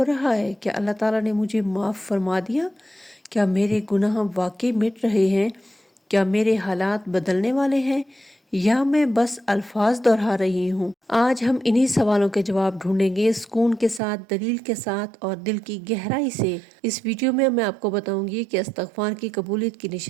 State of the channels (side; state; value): left; drops out; at 14.0 s